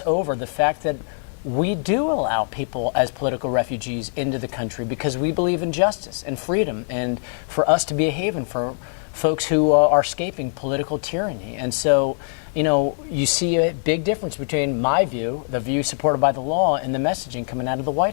over the fact that we do allow people as political refugees into the country because we believe in justice and freedom and for us to be a haven for folks who are escaping political tyranny. And so, you know, you see a big difference between my view, the view supported by the law, and the messaging coming out of the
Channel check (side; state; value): right; silent; digital silence